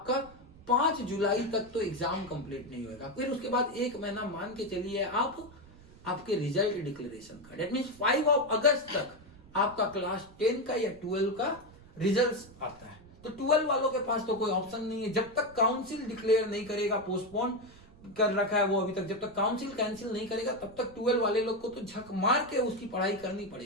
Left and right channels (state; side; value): noise; right; rumble, 22 dB below the sound